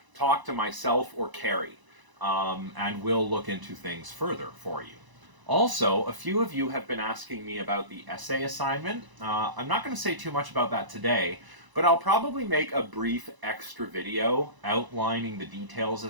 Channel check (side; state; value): left; late; 1.0 ms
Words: talk to myself or Carrie, and we'll look into things further for you. Also, a few of you have been asking me about the essay assignment. I'm not going to say too much about that today, but I'll probably make a brief extra video outlining the details